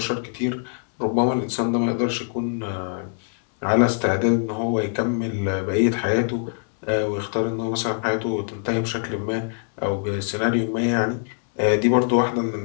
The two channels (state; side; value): silent; right; digital silence